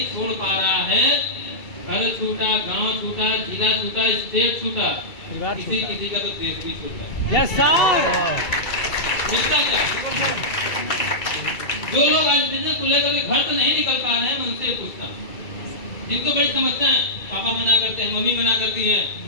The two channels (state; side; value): late; right; 2.3 ms